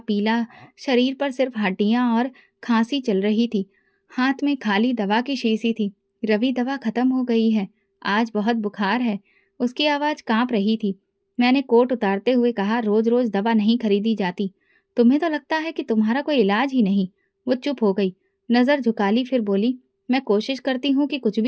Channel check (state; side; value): identical; both; correlation 1.00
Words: शरीर पर सिर्फ हड्डियां और खांसी चल रही थी। हाथ में खाली दवा की शीशी थी। रवि, दवा खत्म हो गई है, आज बहुत बुखार है। उसकी आवाज कांप रही थी। मैंने कोट उतारते हुए कहा, रोज रोज दवा नहीं खरीदी जाती। तुम्हें तो लगता है कि तुम्हारा कोई इलाज ही नहीं। वो चुप हो गई, नजर झुका ली, फिर बोली, मैं कोशिश करती हूँ कि कुछ